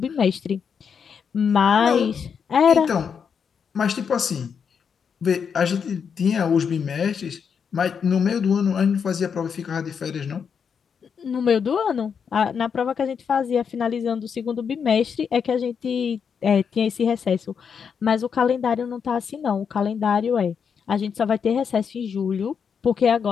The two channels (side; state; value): right; quieter; 6.7 dB